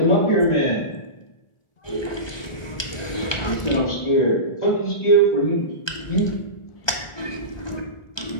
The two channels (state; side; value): late; right; 1.2 ms